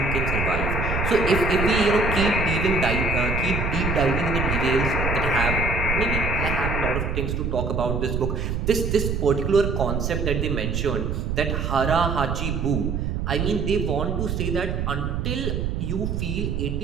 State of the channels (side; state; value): right; noise; rumble, 1 dB below the sound